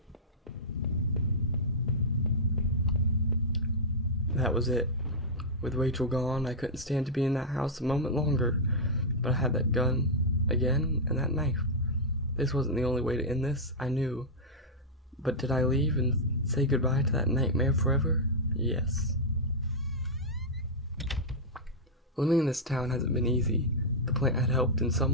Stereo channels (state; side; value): normal; both; correlation -0.06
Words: That was it. With Rachel gone, I couldn't stand to be in that house a moment longer. But I had that gun again and that knife. This wasn't the only way to end this, I knew. But did I leave and say goodbye to that nightmare forever? Yes. Living in this town hasn't been easy. The plant had helped in